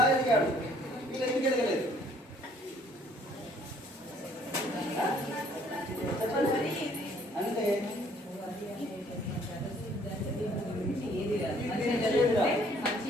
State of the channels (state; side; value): normal; both; correlation 0.61